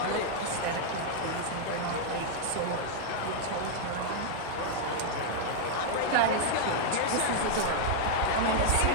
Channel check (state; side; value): different; both; correlation -0.01